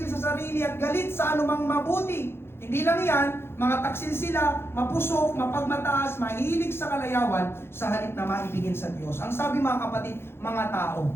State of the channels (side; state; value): right; late; 0.11 ms